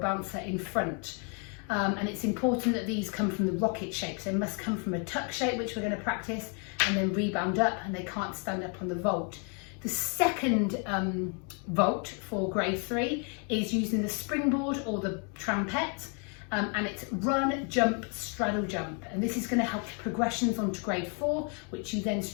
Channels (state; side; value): quieter; right; 38.0 dB